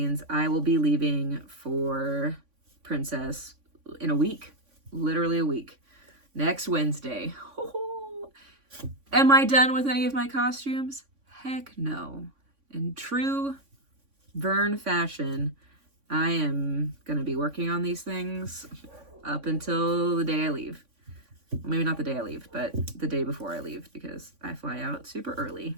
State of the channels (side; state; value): left; late; 3.5 ms